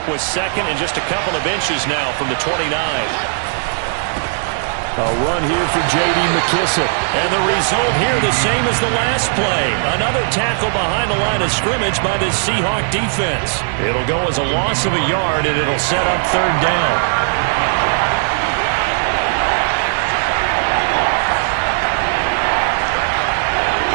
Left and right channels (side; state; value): left; silent; digital silence